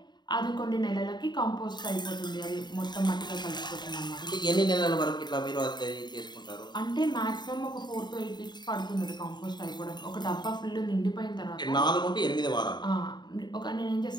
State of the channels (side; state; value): right; late; 0.21 ms